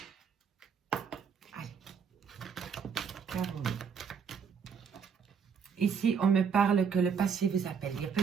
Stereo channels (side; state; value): left; quieter; 6.6 dB